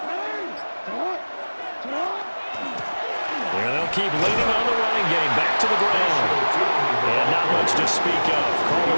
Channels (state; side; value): inverted; both; correlation -1.00